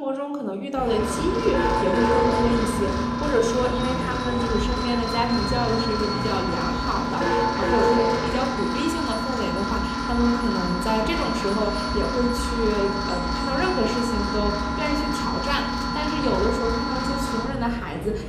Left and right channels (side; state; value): both; identical; correlation 1.00